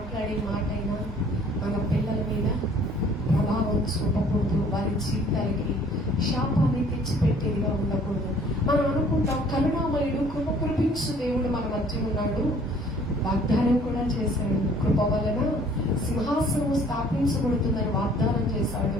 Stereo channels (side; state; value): both; normal; correlation 0.56